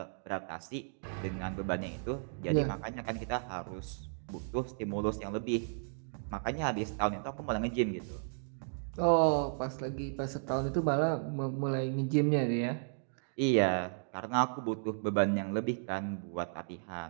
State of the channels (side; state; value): left; silent; digital silence